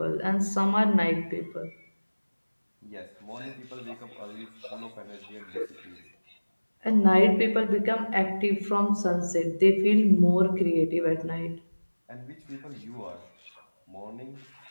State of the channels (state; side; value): inverted; both; correlation -1.00